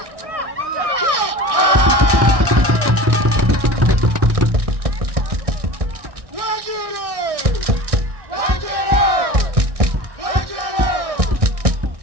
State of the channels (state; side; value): late; left; 1.6 ms